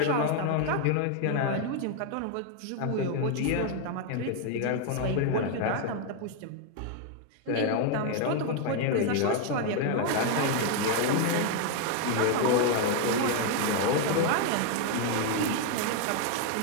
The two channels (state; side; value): different; both; correlation 0.01